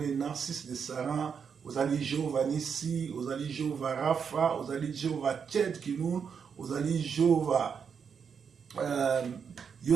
Narcisse de Saran, ozali Jehovah Nissi, ozali Jehovah Rapha, ozali Jehovah Tchedkinoun, ozali Jehovah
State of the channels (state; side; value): quieter; left; 6.7 dB